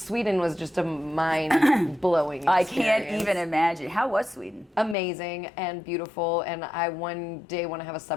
was just a mind-blowing I experience. can't even imagine. How was Sweden? Amazing and beautiful, and I one day want to have a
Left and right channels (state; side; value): drops out; right; at 5.0 s